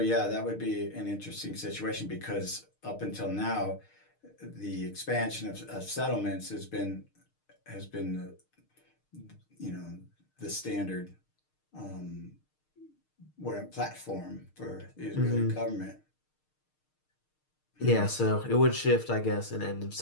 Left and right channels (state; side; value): late; right; 6.5 ms